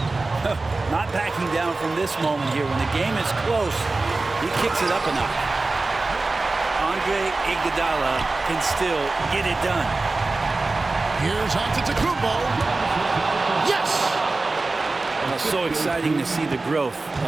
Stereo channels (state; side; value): quieter; left; 3.4 dB